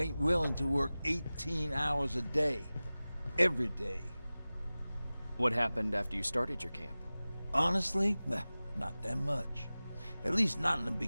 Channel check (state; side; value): inverted; both; correlation -0.98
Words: willing to work 18 hours a day. Every day. What happened after you started your camp? Honestly, not that much. At least not in the